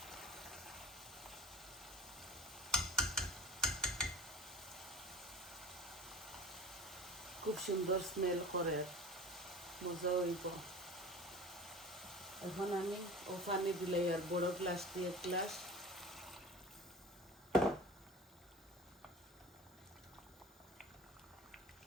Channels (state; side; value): normal; both; correlation 0.39